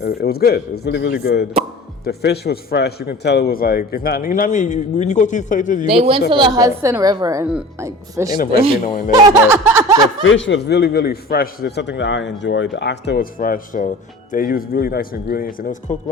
was good. It was really, really good. The fish was fresh. You can tell it was like, it's not, you know what I mean? When you go to these places, they went to the Hudson River and like fished. Ain't no branzino in there, but the fish was really, really fresh. It's something that I enjoyed. The oxtail was fresh, so they used really nice ingredients and it was cooked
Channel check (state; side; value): normal; both; correlation 0.39